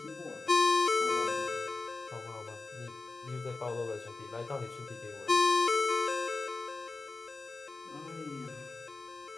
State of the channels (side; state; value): right; quieter; 3.6 dB